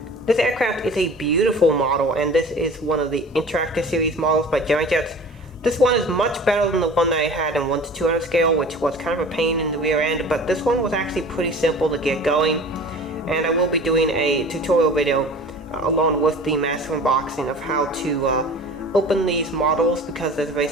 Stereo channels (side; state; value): both; normal; correlation 0.41